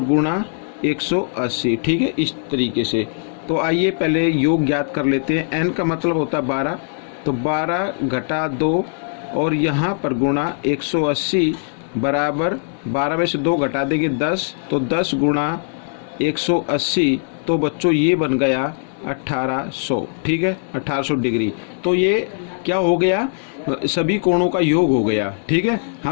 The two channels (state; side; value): silent; right; digital silence